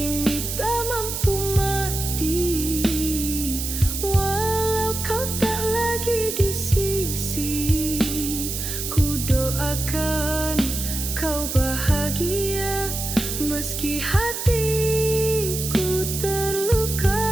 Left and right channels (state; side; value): noise; right; hiss, 4 dB below the sound